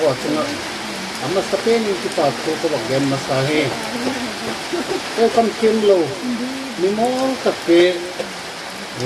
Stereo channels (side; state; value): both; identical; correlation 1.00